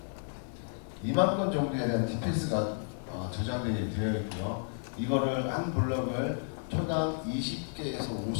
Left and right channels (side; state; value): right; silent; digital silence